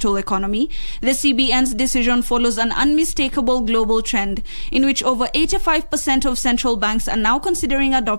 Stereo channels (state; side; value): inverted; both; correlation -1.00